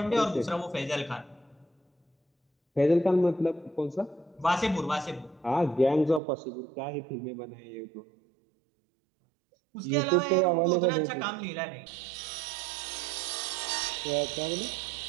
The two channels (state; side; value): drops out; left; at 6.2 s